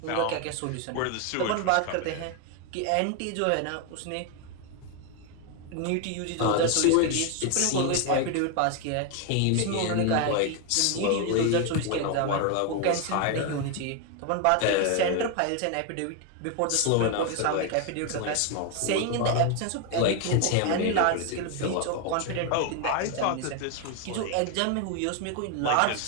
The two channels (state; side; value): different; both; correlation 0.01